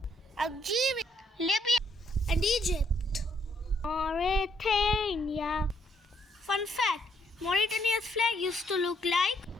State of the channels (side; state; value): both; normal; correlation 0.72